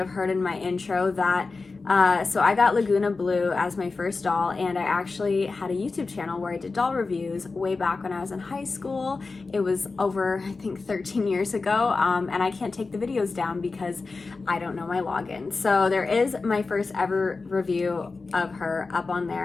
heard in my intro that so I got Laguna Blue as my first doll, and I actually had a YouTube channel where I did doll reviews way back when I was in high school. It was over, I think, 13 years ago, and I can't take the videos down because I don't know my login. So there is my first ever review of her up on there,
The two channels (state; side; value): quieter; right; 4.0 dB